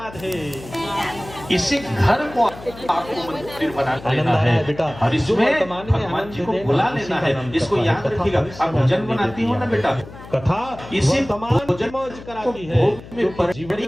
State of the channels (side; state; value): left; noise; hum, 17 dB below the sound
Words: इसी घर को आपको मंदिर बना लेना आनंद है आया बेटा। और जो इसमें वर्तमान में भगवान आनंद जी को देगा, बुला उसी लेना का है। नाम इसको कथा है। याद कथा रखिएगा। भविष्य आप में भोजन आनंद बनाती हो ना बेटा, कथा इसी वर्तमान भोजन की मौज को कराती है। भोग में क्योंकि